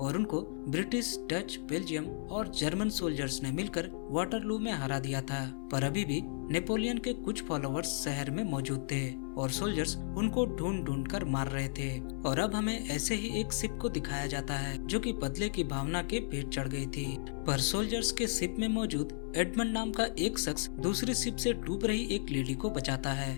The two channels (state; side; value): silent; right; 55 dB below the other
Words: और उनको ब्रिटिश, डच, बेल्जियम और जर्मन सोल्जर्स ने मिलकर वाटरलू में हरा दिया था। पर अभी भी नेपोलियन के कुछ फॉलोअर्स शहर में मौजूद थे और सोल्जर्स उनको ढूंढ ढूंढ कर मार रहे थे। और अब हमें ऐसे ही एक शिप को दिखाया जाता है जो कि बदले की भावना के पेट चढ़ गई थी। पर सोल्जर्स के शिप में मौजूद एडमंड नाम का एक शख्स दूसरी शिप से डूब रही एक लेडी को बचाता